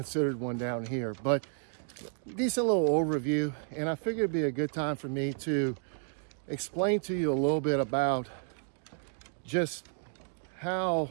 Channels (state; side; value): silent; left; 57 dB below the other